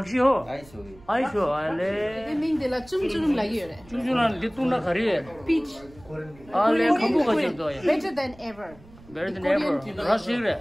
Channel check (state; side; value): noise; right; rumble, 23 dB below the sound